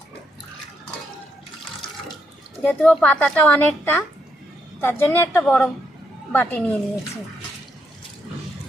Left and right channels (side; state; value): both; normal; correlation 0.77